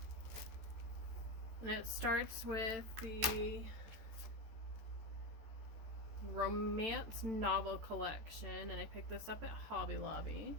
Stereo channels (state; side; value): late; left; 14 ms